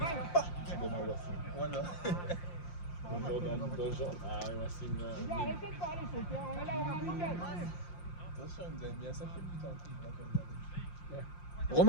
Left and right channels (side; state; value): right; late; 5.7 ms